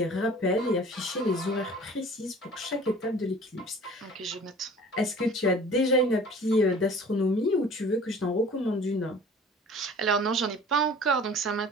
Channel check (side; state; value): both; normal; correlation 0.46